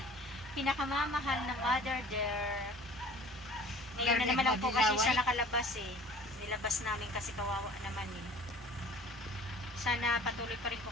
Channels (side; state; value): both; normal; correlation 0.46